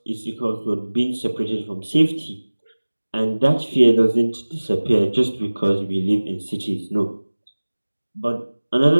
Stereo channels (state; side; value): inverted; both; correlation -1.00